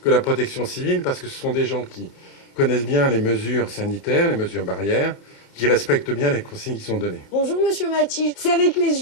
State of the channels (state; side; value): late; right; 30 ms